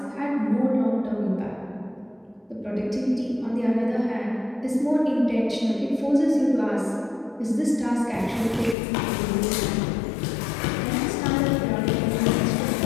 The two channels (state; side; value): drops out; right; at 8.8 s